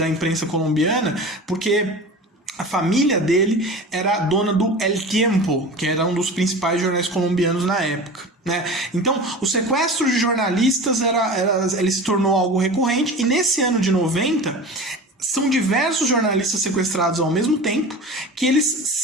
imprensa colombiana, porque a família dele era dona do El Tiempo, que era um dos principais jornais colombianos na época, né? Então, o sequestro de jornalistas ele se tornou algo recorrente, e nesse ano de 90, são diversos jornalistas sequestrados ao mesmo tempo, que eles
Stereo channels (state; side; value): normal; both; correlation 0.34